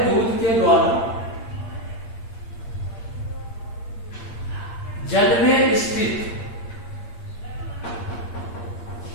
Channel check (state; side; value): late; right; 8.7 ms